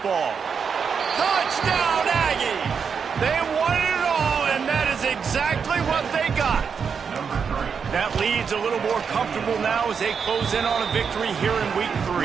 ball. Touchdown, Aggie! They won it all, and that is exactly what they got. That lead's a little more comfortable now as they close in on a victory here in week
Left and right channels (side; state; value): left; quieter; 6.3 dB